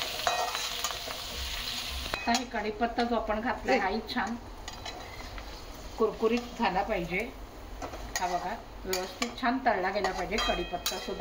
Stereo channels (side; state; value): both; identical; correlation 1.00